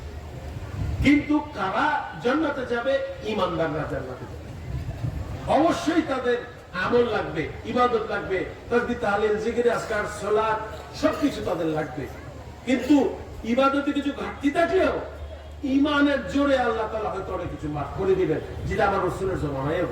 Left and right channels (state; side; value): identical; both; correlation 1.00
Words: কিন্তু কারা জান্নাতে যাবে? ঈমানদাররা জান্নাতে যাবে। অবশ্যই তাদের আমল লাগবে, ইবাদত লাগবে, তাসবিহ তাহলিল জিকির আজকার সালাত সবকিছু তাদের লাগবে। কিন্তু ইবাদতে কিছু ঘাটতি থাকলেও ঈমানের জোরে আল্লাহ তাআলা হয়তো অনেক কিছু মাফ করে দিবেন, যেটা আমার রাসূলের জামানায়